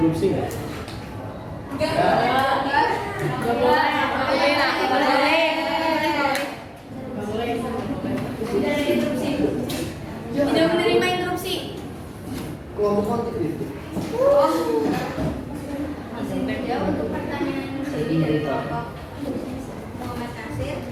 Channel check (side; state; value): both; identical; correlation 1.00